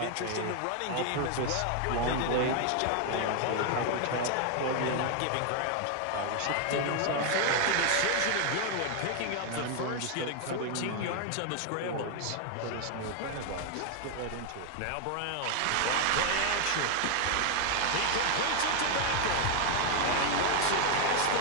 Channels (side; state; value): both; different; correlation 0.01